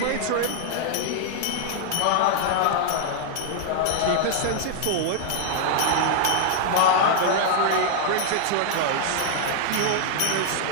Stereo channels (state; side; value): different; both; correlation 0.00